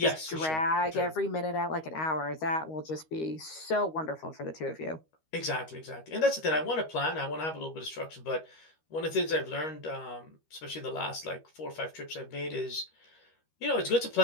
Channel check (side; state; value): right; late; 13 ms